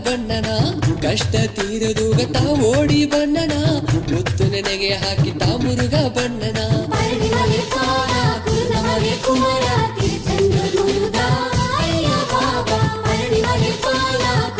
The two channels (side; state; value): both; identical; correlation 1.00